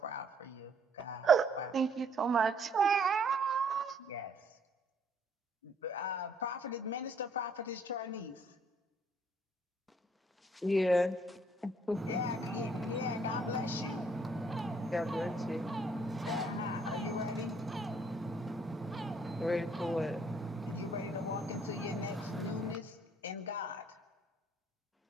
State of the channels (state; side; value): normal; both; correlation 0.65